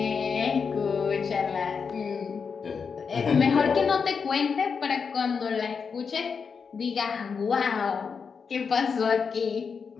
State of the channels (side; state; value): right; quieter; 5.8 dB